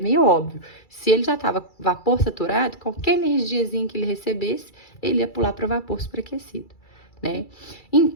óbvio. Se ele já estava vapor saturado, qualquer energiazinha que ele recebesse, ele ia pular para vapor superaquecido, né?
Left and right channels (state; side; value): late; right; 2.3 ms